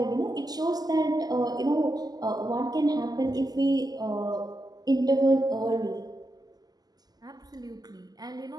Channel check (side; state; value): left; late; 0.19 ms